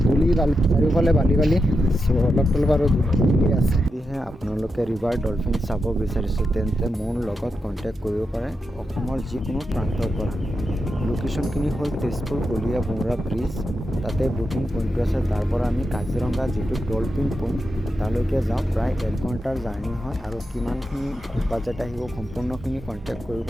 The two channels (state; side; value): normal; both; correlation 0.87